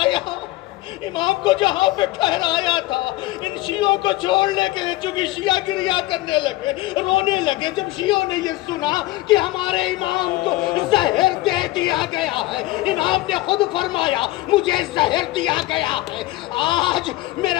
امام کو جہاں پہ ٹھہرایا تھا، ان شیعوں کو چھوڑنے کے چونکہ شیعہ گریہ کرنے لگے، رونے لگے۔ جب شیعوں نے یہ سنا کہ ہمارے امام کو زہر دے دیا گیا ہے، امام نے خود فرمایا مجھے زہر دیا گیا ہے، آج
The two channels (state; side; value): quieter; right; 18.0 dB